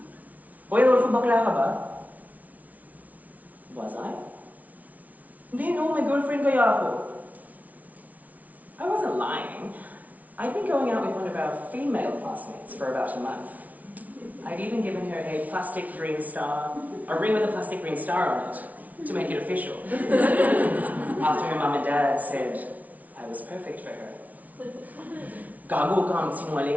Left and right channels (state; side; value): late; left; 0.072 ms